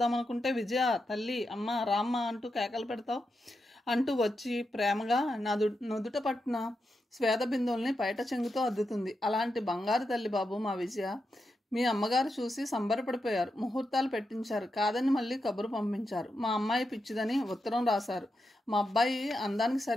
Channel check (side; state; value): both; normal; correlation 0.87